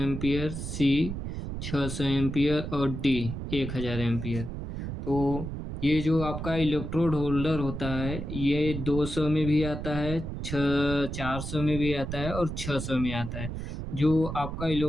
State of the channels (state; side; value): noise; right; rumble, 6 dB below the sound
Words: सी 600 एम्पियर और डी 1000 एम्पियर। तो ये जो आपका इलेक्ट्रोड होल्डर होता है ये 200 में भी आता है, 400 में भी आता है और 600 में आता है। जो आपका